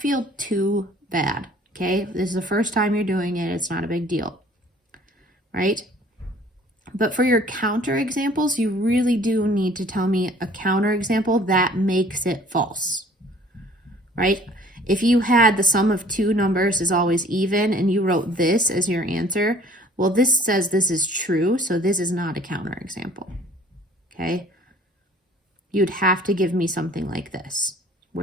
too bad, okay? This is the first time you're doing it. It's not a big deal, right? But for your counter examples, you really do need to tell me a counter example that makes it false, right? If you had the sum of two numbers is always even and you wrote this as your answer, well, this says this is true, so this is not a counter example, okay? You'd have to give me something like this,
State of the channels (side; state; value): both; normal; correlation 0.53